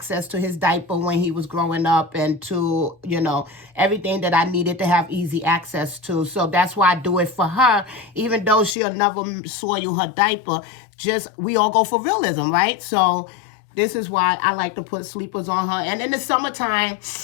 to his diaper when he was growing up and to, you know, everything that I needed to have easy access to. So that's why I do it for her, even though she'll never soil her diaper. Just, we all go for Realism, right? So this is why I like to put sleepers on her. And in the summertime,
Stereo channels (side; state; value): right; drops out; at 8.8 s